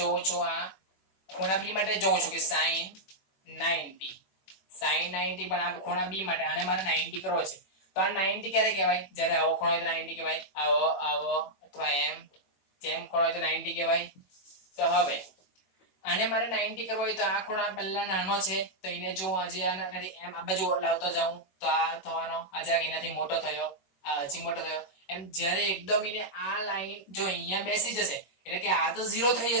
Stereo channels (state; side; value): late; right; 21 ms